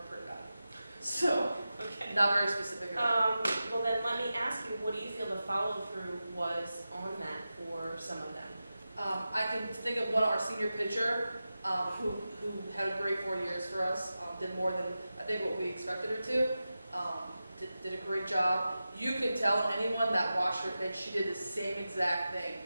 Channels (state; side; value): inverted; both; correlation -0.93